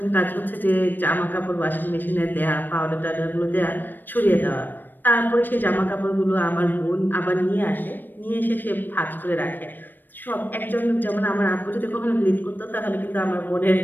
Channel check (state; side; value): late; right; 0.092 ms